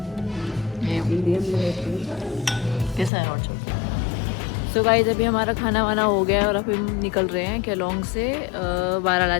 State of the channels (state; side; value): drops out; right; at 3.1 s